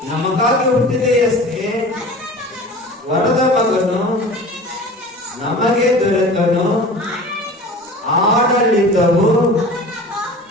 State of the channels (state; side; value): normal; both; correlation 0.39